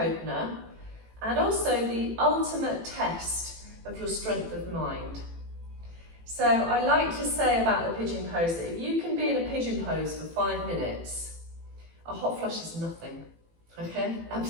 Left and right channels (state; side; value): late; left; 18 ms